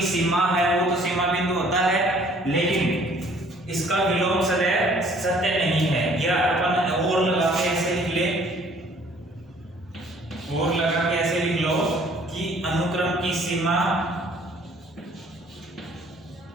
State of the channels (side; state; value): both; normal; correlation 0.57